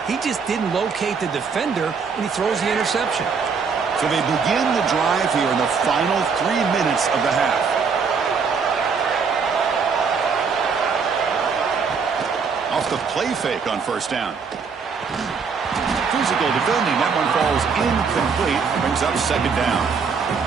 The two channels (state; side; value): quieter; left; 5.6 dB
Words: he just didn't locate the defender when he throws the interception. So they begin the drive here in the final 3 minutes of the half. Off the play fake on first down. Physical defending. That one falls incomplete. Brings up second down.